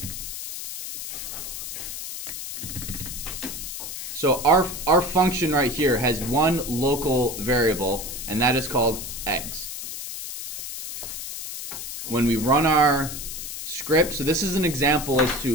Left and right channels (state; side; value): noise; left; hiss, 7 dB below the sound